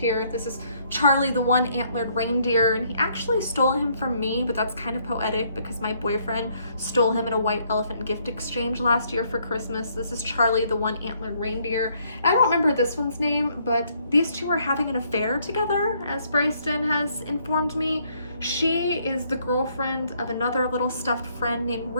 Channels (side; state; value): both; inverted; correlation -0.68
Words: This is Charlie, the one antlered reindeer, and he actually stole him from me, but that's kind of poetic because my boyfriend stole him at a white elephant gift exchange last year for Christmas. This is Charlie, the one antlered reindeer. I don't remember this one's name, but these two are having an affair together, as Bryson has informed me. She is the girlfriend of another little stuffed friend named